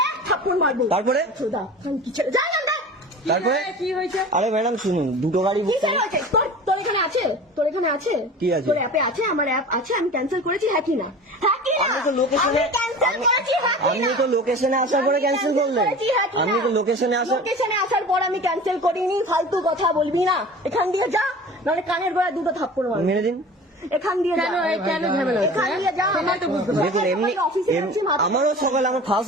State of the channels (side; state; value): both; normal; correlation 0.38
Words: তারপরে কি হয়েছে? আরে ম্যাডাম শুনুন, দুটো গাড়ি বুক তোর এখানে আছে? কি আছে? তোর অ্যাপে আছে? আমার অ্যাপ আছে, আমি ক্যান্সেল করেছি, হ্যাঁ কি না? আমি তো লোকেশনে আসার পরে ক্যান্সেল করলেন। আমি তো লোকেশনে আসার পর আমি ক্যান্সেল করিনি। ফালতু কথা বলবি না, এখান দিয়ে যা, নাহলে কানের গোড়ায় দুটো থাপ্পড় মারবো। মেরে দিন। এখান দিয়ে যা। কেন ঝামেলা? এখান দিয়ে যা। দেখুন এমনি আমারও সকাল, আমার